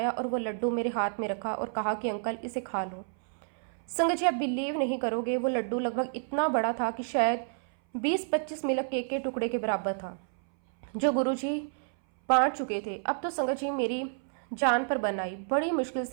और वो लड्डू मेरे हाथ में रखा और कहा कि अंकल इसे खा लो। संगत जी आप बिलीव नहीं करोगे, वो लड्डू लगभग इतना बड़ा था कि शायद 20-25 मिल्क केक के टुकड़े के बराबर था, जो गुरुजी बांट चुके थे। अब तो संगत जी मेरी जान पर बन आई। बड़ी मुश्किल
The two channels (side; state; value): left; silent; 58 dB below the other